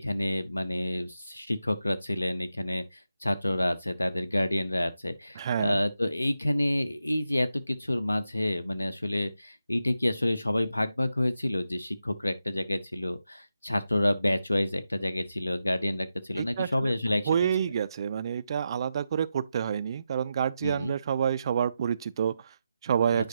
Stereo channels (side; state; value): both; inverted; correlation -0.88